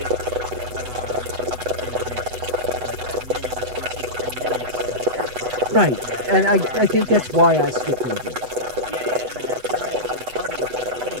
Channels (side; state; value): left; late; 8.0 ms